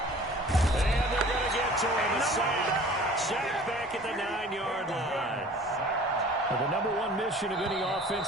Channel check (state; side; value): normal; both; correlation 0.47